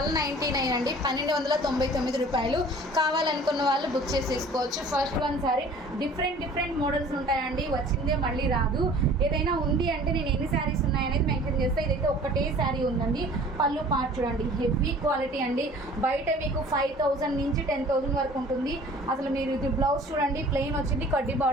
అండి, 1299 రూపాయలు. కావాలనుకున్న వాళ్ళు బుక్ చేసేసుకోవచ్చు. First one sorry different models ఉంటాయండి, వచ్చిందే మళ్ళీ రాదు. ఏదైనా ఉంది అంటే నేను ఎన్ని శారీస్ ఉన్నాయనేది మెన్షన్ చేస్తే, ఇదైతే ఒక్కటే శారీ ఉందండి. పళ్ళు పార్ట్ చూడండి, హెవీ క్వాలిటీ అండి. బయట మీకు 5000 నుంచి 10,000 వరకు ఉంటుంది. అసలు మీరు ఇది బ్లౌజ్ చూడండి, ప్లెయిన్ వచ్చింది, కడ్డీ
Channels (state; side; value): normal; both; correlation 0.48